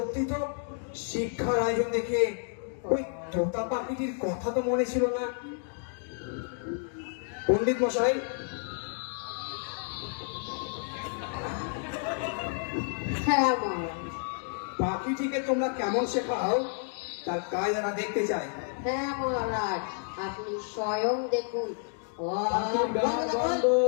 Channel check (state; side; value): silent; right; 58 dB below the other